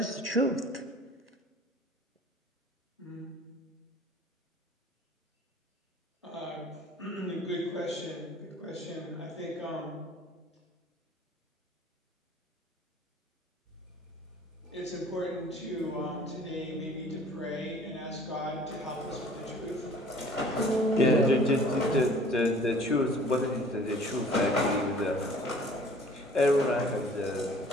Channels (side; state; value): both; normal; correlation 0.50